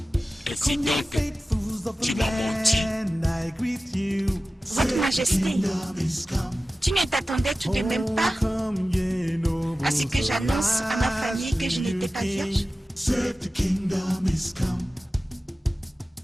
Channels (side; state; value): both; normal; correlation 0.95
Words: Ainsi donc, tu m'as menti? Votre Majesté, tu ne t'attendais tout de même pas à ce que j'annonce à ma famille que je n'étais pas vierge?